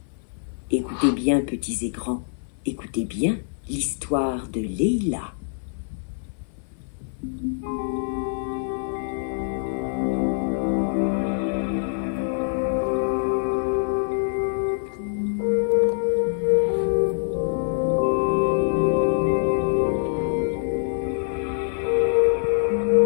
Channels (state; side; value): silent; right; 61 dB below the other